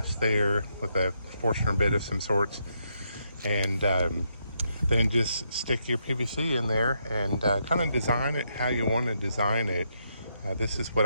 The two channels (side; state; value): both; inverted; correlation -0.78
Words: there with a Forstner bit of some sorts. And then just stick your PVC in there and kind of design it how you want to design it. This is what